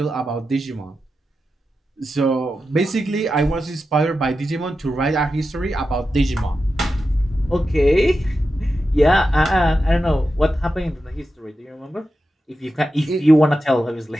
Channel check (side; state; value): both; normal; correlation 0.90